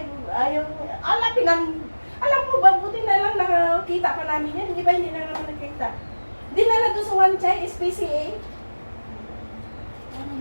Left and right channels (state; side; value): inverted; both; correlation -1.00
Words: ayaw, alam mo ba, buti na lang nakakita pa namin yan, di ba hindi na naman nakita. Dinala doon sa One Chai, SPCA.